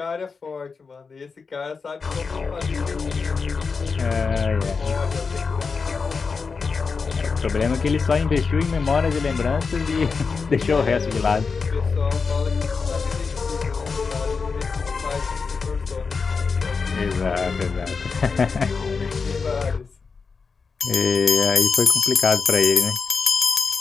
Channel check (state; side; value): quieter; right; 5.0 dB